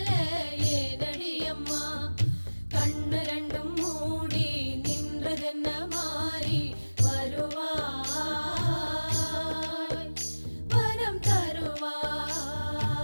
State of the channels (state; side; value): inverted; both; correlation -1.00